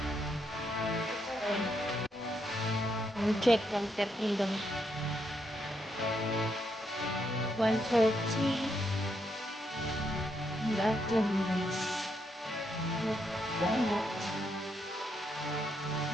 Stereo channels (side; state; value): both; normal; correlation 0.78